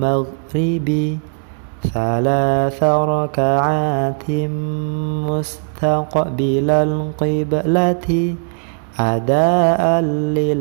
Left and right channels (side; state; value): left; silent; digital silence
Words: thalatha raka'atin mustaqbilal qiblati adaan